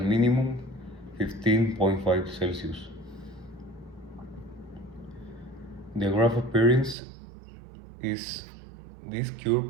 minimum 15.5 Celsius. The graph appearance is, this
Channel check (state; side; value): drops out; left; at 7.0 s